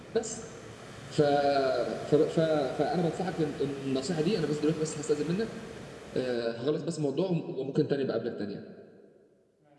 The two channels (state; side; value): identical; both; correlation 1.00